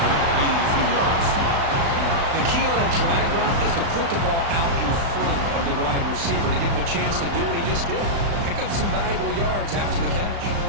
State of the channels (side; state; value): left; late; 35 ms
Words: gaining a few yards. The key on a drag route is to put the ball out in front of the wide receiver to give him a chance to do what he just did. Pick up some valuable yards after the catch.